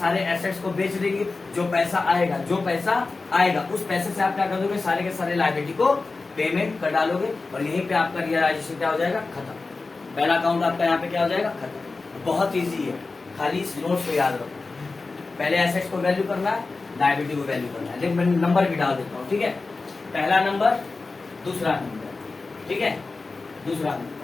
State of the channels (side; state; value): right; quieter; 3.8 dB